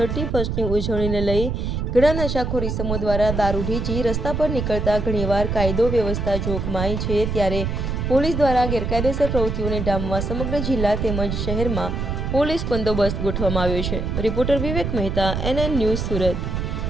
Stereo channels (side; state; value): right; noise; rumble, 2 dB below the sound